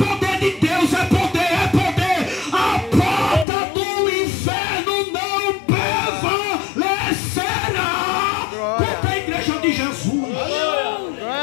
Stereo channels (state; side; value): drops out; right; at 3.5 s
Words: de Deus, é poder, é poder. A porta do inferno não prevalecerá contra a igreja de Jesus.